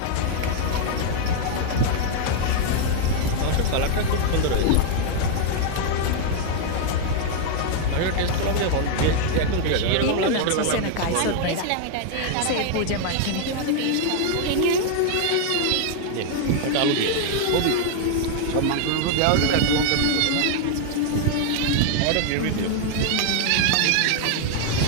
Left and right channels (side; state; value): both; different; correlation 0.00